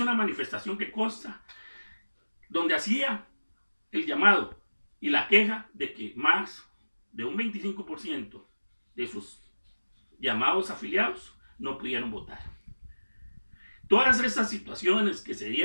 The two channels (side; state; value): both; inverted; correlation -1.00